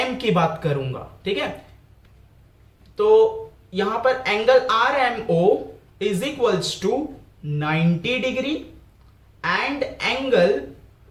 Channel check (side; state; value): both; identical; correlation 1.00